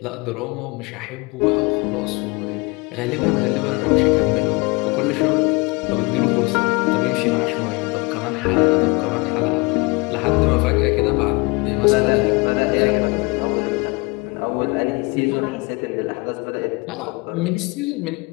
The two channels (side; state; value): right; quieter; 27.4 dB